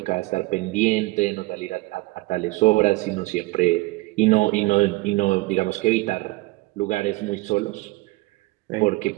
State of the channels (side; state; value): left; quieter; 22.1 dB